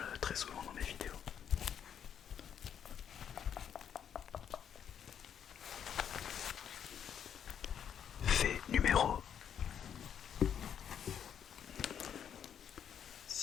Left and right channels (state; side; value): quieter; right; 8.6 dB